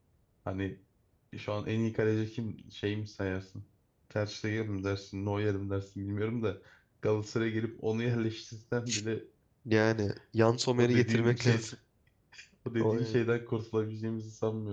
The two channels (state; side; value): identical; both; correlation 1.00